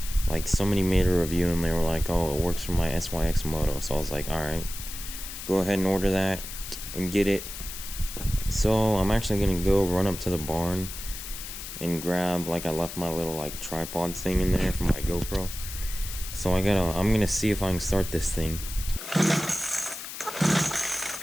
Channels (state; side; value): noise; left; hiss, 9 dB below the sound